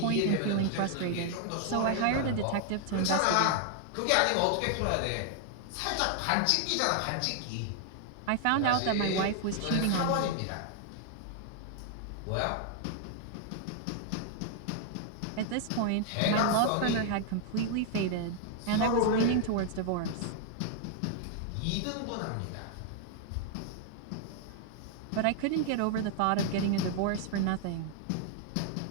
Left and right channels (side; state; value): both; different; correlation 0.00